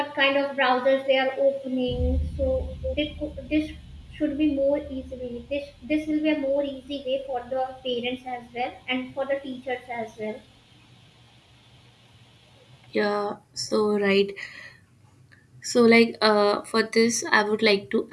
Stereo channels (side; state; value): both; identical; correlation 1.00